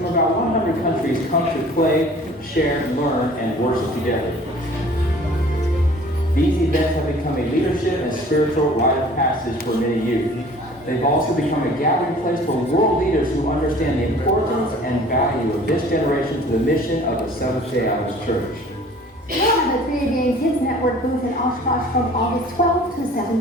about 100 countries come to play, share, learn, and worship together. These events have become a leadership and spiritual rite of passage for many youth. They've also become a gathering place for world leaders who understand the importance and value of this generation to the mission of the Seventh-day Adventist Church. We have a 3-day Kids Network booth in Oshkosh from August 12th to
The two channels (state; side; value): normal; both; correlation 0.49